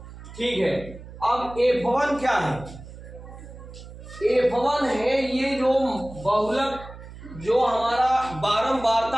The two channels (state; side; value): noise; right; hum, 15 dB below the sound